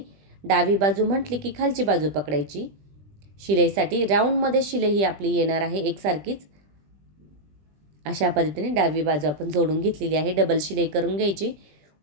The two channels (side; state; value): left; late; 20 ms